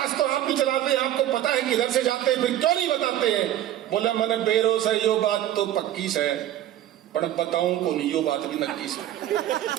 तो आप भी चलाते हैं, आपको पता है किधर से जाते हैं, फिर क्यों नहीं बताते हैं? बोला मैंने बेरोस है, यो बात तो पक्की से है, पर बताऊं को नहीं, यो बात भी नक्की से।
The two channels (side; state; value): left; quieter; 12.6 dB